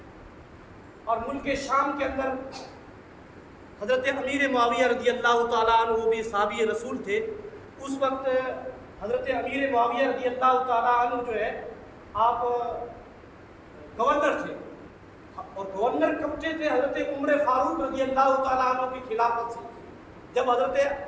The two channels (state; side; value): identical; both; correlation 1.00